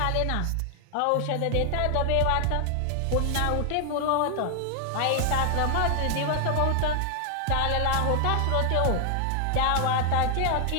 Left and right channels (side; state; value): both; different; correlation 0.00